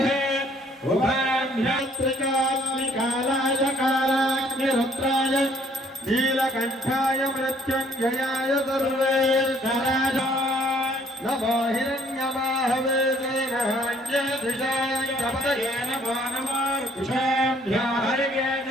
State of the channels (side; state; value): both; normal; correlation 0.62